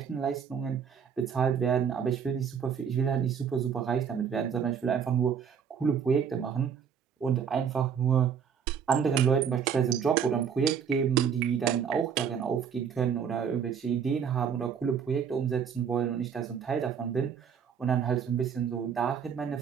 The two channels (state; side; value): quieter; left; 7.3 dB